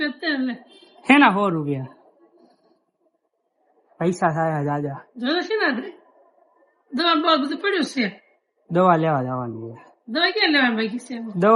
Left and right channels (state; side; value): identical; both; correlation 1.00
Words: તેલ હેના 100 રૂપિયા પૈસા થાય દાદા. જોયો છે ને દવા બહુ બધું પડ્યું છે. દવા લેવા જવાની છે. દવા ક્યાં લેવાની બાકી છે?